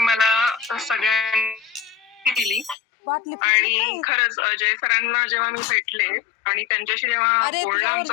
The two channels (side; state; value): right; drops out; at 2.8 s